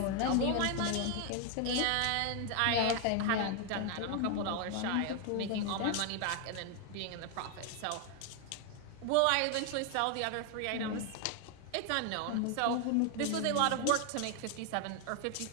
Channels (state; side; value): different; both; correlation 0.00